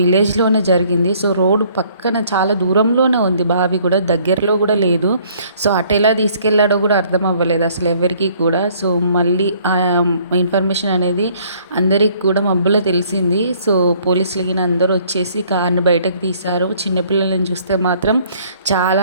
జరిగింది. సో, రోడ్డు పక్కన చాలా దూరంలోనే ఉంది బావి కూడా, దగ్గరలో కూడా లేదు. సో, అటెలా తీసుకెళ్ళాడో కూడా అర్థం అవ్వలేదు అసలు ఎవరికీ కూడా. సో, మళ్ళీ ఇన్ఫర్మేషన్ అనేది అందరికి కూడా మబ్బులో తెలిసింది. సో, పోలీసులు గిన అందరూ వచ్చేసి కార్‌ని బయటకు తీశారు. చిన్న పిల్లలని చూస్తే మాత్రం చాలా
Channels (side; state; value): both; inverted; correlation -0.60